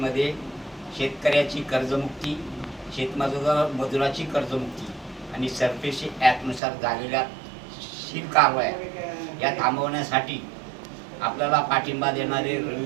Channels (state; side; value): drops out; left; at 6.6 s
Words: शेतकऱ्याची कर्जमुक्ती, शेतमजुराची कर्जमुक्ती आणि सरफेसी ॲक्टनुसार झालेल्या शील कारवाया या थांबवण्यासाठी आपल्याला पाठिंबा देणारे